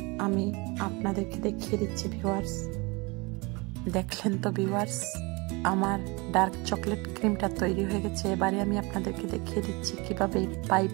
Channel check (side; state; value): left; quieter; 26.9 dB